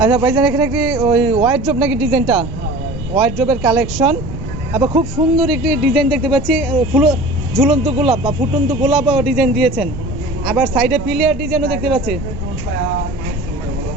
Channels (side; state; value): right; noise; rumble, 10 dB below the sound